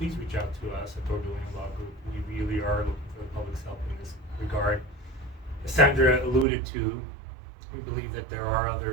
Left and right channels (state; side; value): drops out; left; at 6.5 s